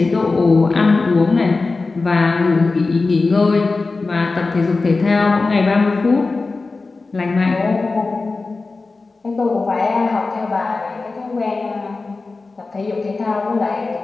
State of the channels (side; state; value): right; quieter; 3.8 dB